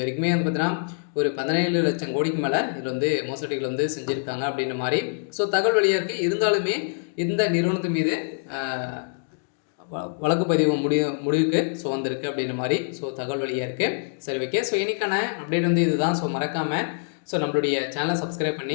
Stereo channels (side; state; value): right; silent; digital silence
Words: வரைக்குமே பார்த்தீங்கன்னா ஒரு 17 லட்சம் கோடிக்கு மேலே இதில் மோசடிகள் செஞ்சுருக்காங்க அப்படின்ற மாதிரி ஸோ தகவல் வெளியாக இருக்குது. இருந்தாலுமே இந்த நிறுவனத்தின் மீது வழக்குப்பதிவு முடிவுக்கு ஸோ வந்திருக்கு அப்படின்ற மாதிரி ஸோ தகவல் வெளியாக இருக்குது. சரி, ஓகே. ஸோ இன்னைக்கான அப்டேட் இதுதான். ஸோ மறக்காமல் ஸோ நம்மளுடைய சேனலை சப்ஸ்கிரைப்